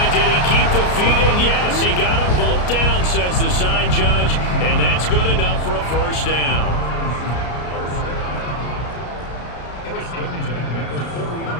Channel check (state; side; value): late; right; 33 ms